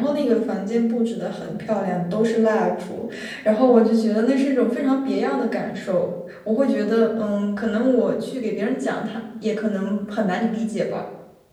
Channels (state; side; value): identical; both; correlation 1.00